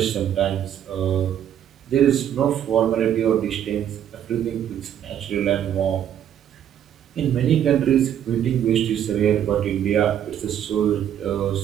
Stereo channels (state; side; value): quieter; left; 10.0 dB